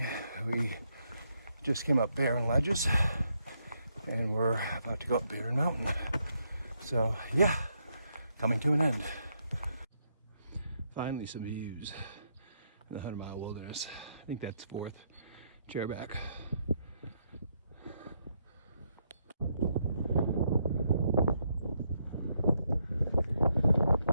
We just came up Barren Ledges, and we're about to go up Barren Mountain. So yeah, coming to an end. Finally some views in the 100-mile wilderness. I think that's 4th Chairback.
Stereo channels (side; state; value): both; inverted; correlation -0.77